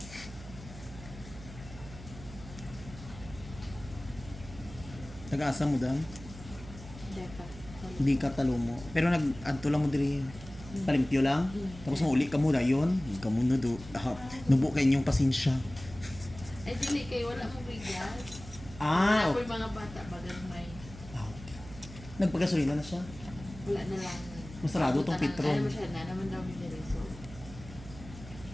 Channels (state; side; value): noise; right; hum, 15 dB below the sound